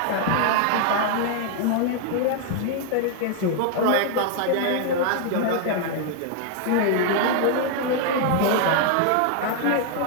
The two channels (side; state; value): both; different; correlation 0.00